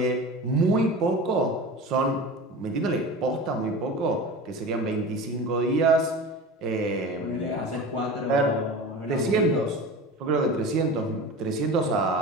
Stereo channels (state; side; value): normal; both; correlation 0.33